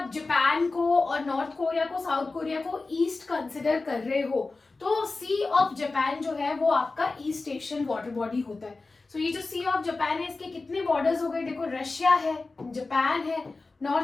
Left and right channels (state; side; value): quieter; right; 3.6 dB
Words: जापान को और नॉर्थ कोरिया को, साउथ कोरिया को ईस्ट कंसिडर कर रहे हो, तो सी ऑफ जापान जो है वो आपका ईस्ट एशियन वाटर बॉडी होता है. सो ये जो सी ऑफ जापान है, इसके कितने बॉर्डर्स हो गए? देखो, रशिया है, जापान है,